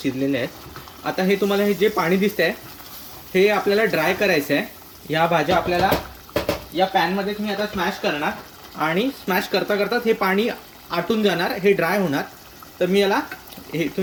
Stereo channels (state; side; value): identical; both; correlation 1.00